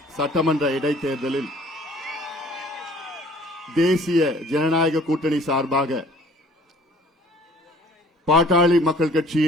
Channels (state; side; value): normal; both; correlation 0.54